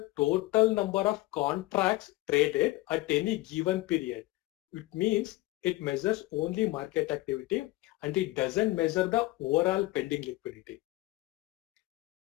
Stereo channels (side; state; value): right; quieter; 19.4 dB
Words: total number of contracts traded at any given period. It means it measures only market activity and it doesn't measure the overall pending liquidity.